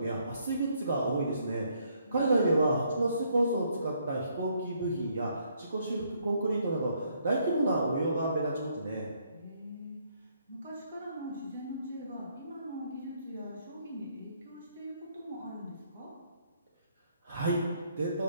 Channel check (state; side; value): inverted; both; correlation -0.70